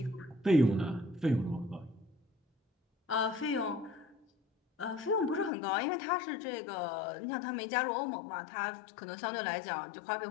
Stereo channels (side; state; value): right; drops out; at 5.5 s